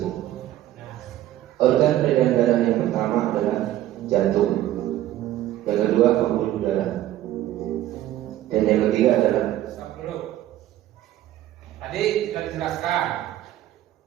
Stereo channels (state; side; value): quieter; left; 13.6 dB